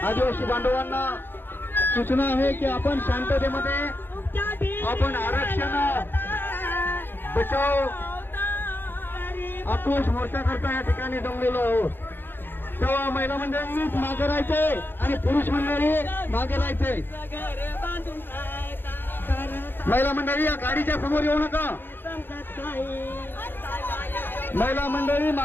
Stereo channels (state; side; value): late; right; 0.10 ms